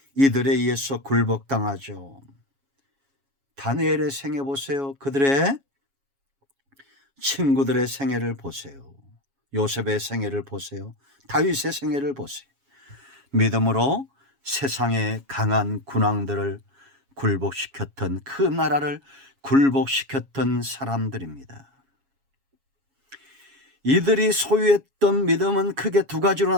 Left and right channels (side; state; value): left; late; 7.3 ms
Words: 이들에 의해서 굴복당하죠. 다니엘의 생애 보세요. 그들의 친구들의 생애를 보세요. 요셉의 생애를 보세요. 다윗의 생애를 보세요. 믿음으로 세상의 강한 군왕들을 굴복시켰던, 그 나라를 굴복시켰던 사람들입니다. 이들이 소유했던 믿음은 크게 두 가지로